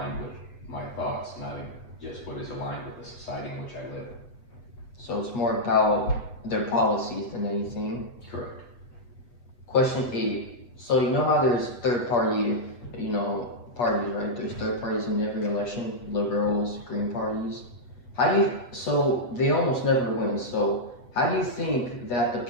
with my thoughts, not just what is aligned with the society in which I live. So it's more about their policies than anything. Correct. Question eight. So you know how there's third party, parties, right? There's third parties in every election, liberals, green parties. So they almost never win. So how do you think that the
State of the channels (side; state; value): right; late; 8.1 ms